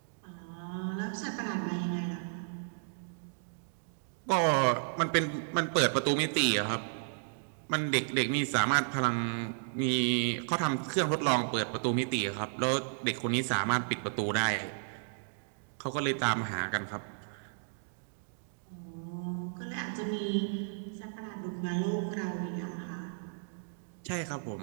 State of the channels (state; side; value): silent; left; digital silence